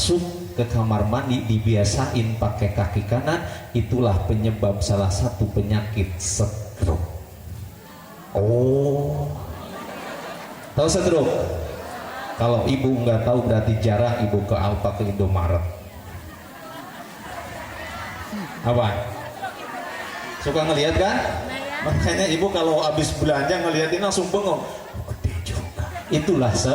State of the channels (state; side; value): identical; both; correlation 1.00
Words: ke kamar mandi dibiasain pakai kaki kanan, itulah penyebab salah satu penyakit stroke. Oh, tahu stroke? Kalau ibu nggak tahu berarti jarang ibu ke Alfa, ke Indomaret. Apa? Suka ngelihat kan? Makanya ibu kalau habis belanja ngeliatin langsung bengong. Itulah